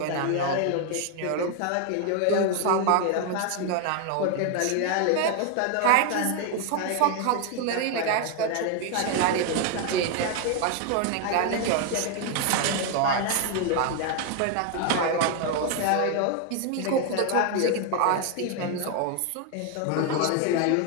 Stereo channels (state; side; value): different; both; correlation 0.01